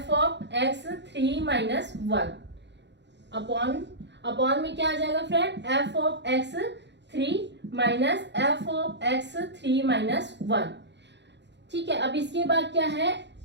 of x3 - 1 upon में क्या आ जाएगा friend, f of x3 - f of x3 - 1, ठीक है। अब इसके बाद क्या है,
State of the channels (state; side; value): late; left; 0.51 ms